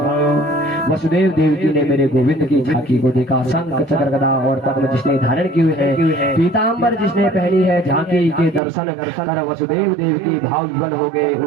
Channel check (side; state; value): left; drops out; at 8.6 s